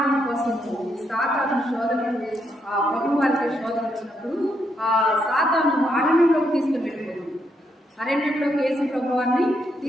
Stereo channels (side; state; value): both; normal; correlation 0.78